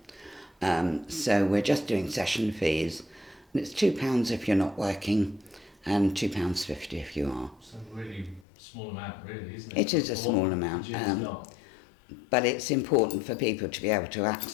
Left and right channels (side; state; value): right; drops out; at 8.5 s